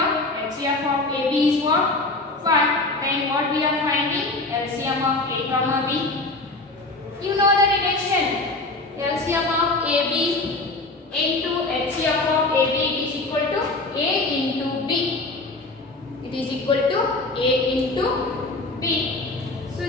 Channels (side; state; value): right; quieter; 3.1 dB